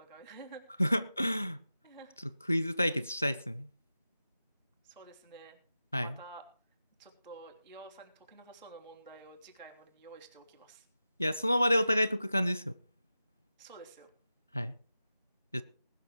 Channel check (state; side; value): inverted; both; correlation -0.94